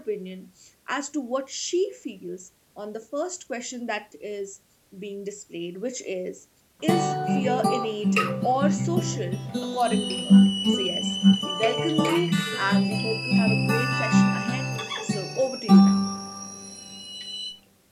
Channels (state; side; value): identical; both; correlation 1.00